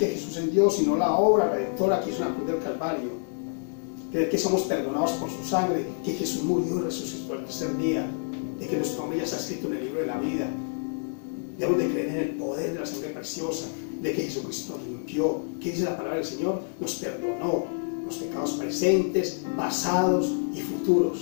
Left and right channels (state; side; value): silent; right; 60 dB below the other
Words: Jesús es Dios, sino la obra redentora que hizo en la cruz del Calvario, creer que somos perdonados por su sangre, que Jesús murió y resucitó al tercer día, de que nuestro nombre ya está escrito en el libro de la vida. Debemos de creer en el poder de la sangre preciosa, de que Jesucristo nos limpió, que dice la palabra del Señor, nos perdonó los pecados presentes, pasados y